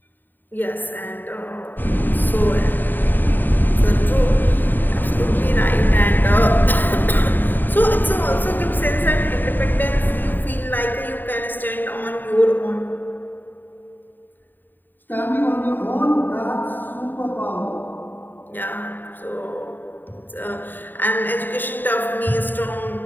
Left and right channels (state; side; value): late; right; 0.091 ms